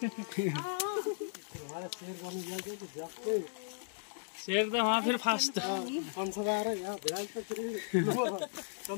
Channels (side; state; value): right; silent; digital silence